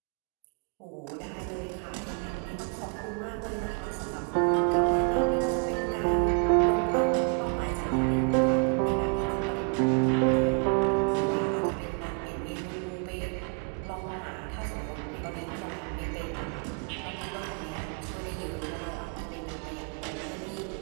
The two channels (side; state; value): left; quieter; 36.3 dB